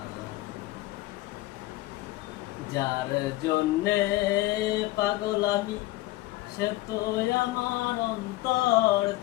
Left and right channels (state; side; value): quieter; right; 18.3 dB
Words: যার জন্যে পাগল আমি, সে তো আমার